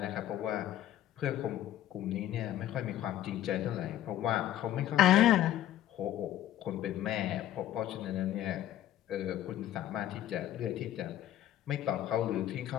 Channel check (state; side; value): quieter; right; 12.7 dB